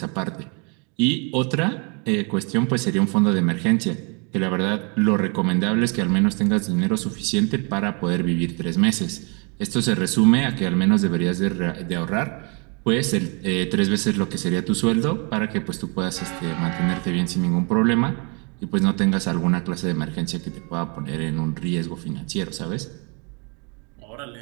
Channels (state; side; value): quieter; left; 34.7 dB